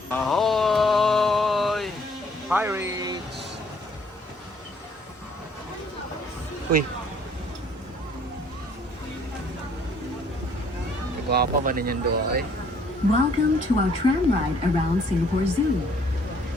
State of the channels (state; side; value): normal; both; correlation 0.61